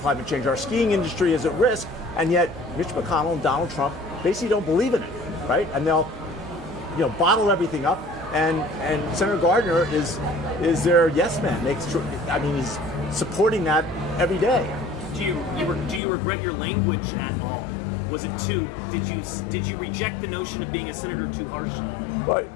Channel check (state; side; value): drops out; right; at 16.0 s